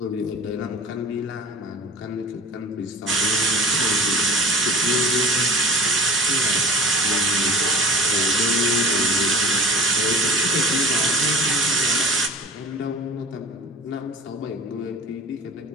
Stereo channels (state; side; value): normal; both; correlation 0.37